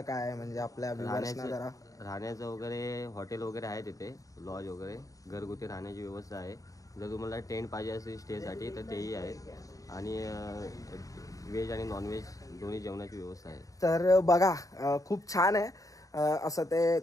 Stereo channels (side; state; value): right; late; 0.16 ms